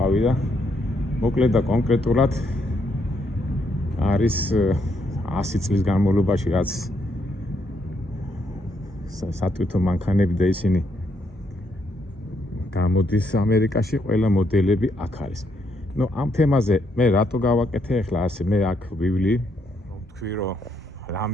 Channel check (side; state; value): both; normal; correlation 0.75